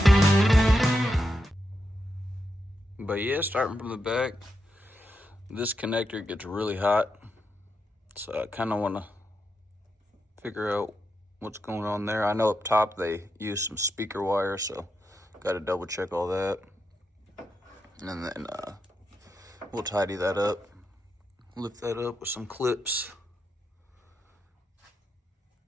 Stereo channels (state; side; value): normal; both; correlation 0.85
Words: But yeah, starting from the back, this connector gets really hot, so I kind of want to figure out what's going on there. I know up top they use some speaker wire, so got to double check all that. And then We'll tidy that up. Lift that up with some clips.